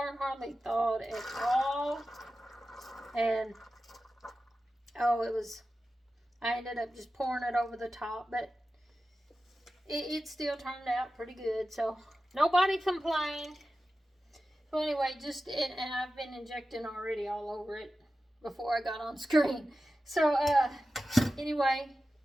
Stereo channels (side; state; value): both; normal; correlation 0.93